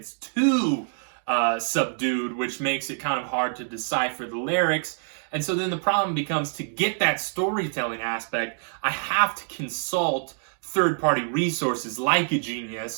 too subdued, which makes it kind of hard to decipher the lyrics. And so then the problem becomes, to get that storytelling aspect, I have to consult third-party resources like a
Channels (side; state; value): left; silent; digital silence